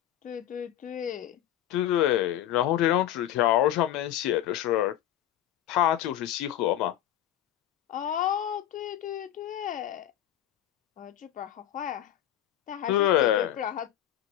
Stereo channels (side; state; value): right; quieter; 12.0 dB